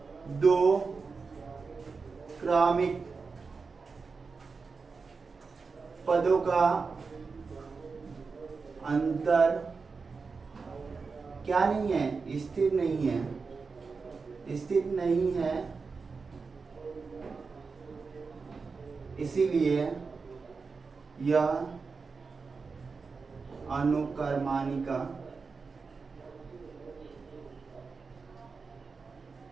2 क्रमिक पदों का अंतर क्या नहीं है, स्थिर नहीं है, स्थिर नहीं है, इसीलिए यह अनुक्रमानिका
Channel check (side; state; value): left; quieter; 4.7 dB